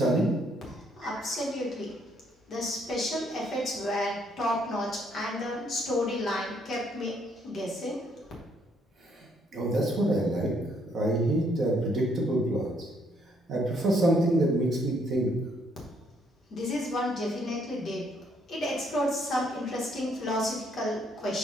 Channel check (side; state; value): both; normal; correlation 0.69